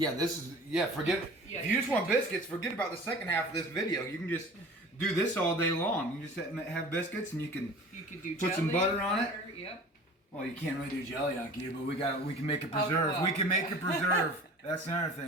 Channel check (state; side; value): normal; both; correlation 0.42